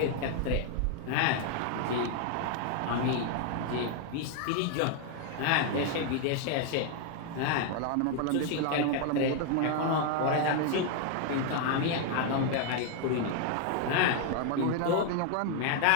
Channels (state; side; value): different; both; correlation 0.00